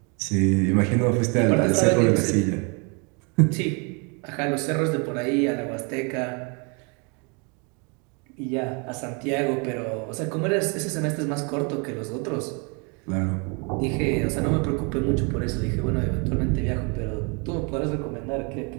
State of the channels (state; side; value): quieter; left; 33.6 dB